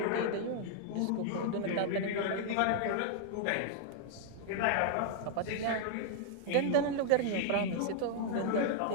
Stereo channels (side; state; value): both; different; correlation -0.01